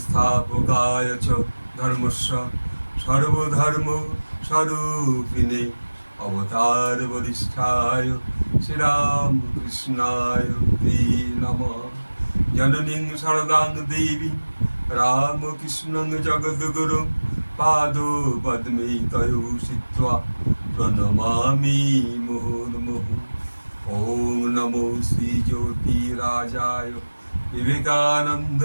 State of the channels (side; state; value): both; inverted; correlation -1.00